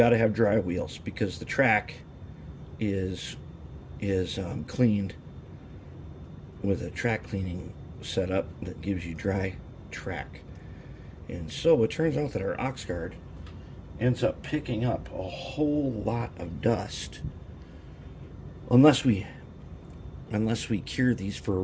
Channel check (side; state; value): both; identical; correlation 1.00